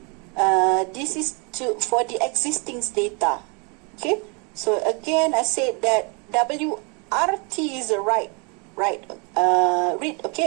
This is for the existing data. Okay. So again, I said that WRT is a write. Right. Read.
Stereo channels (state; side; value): quieter; left; 33.3 dB